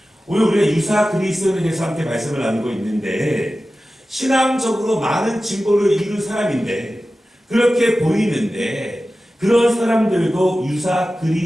오늘 우리가 유사 그리스도인에 대해서 함께 말씀을 나누고 있는데 신앙적으로 많은 진보를 이룬 사람인데 그렇게 보이는데 그런 사람들도 유사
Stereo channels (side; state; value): both; normal; correlation 0.95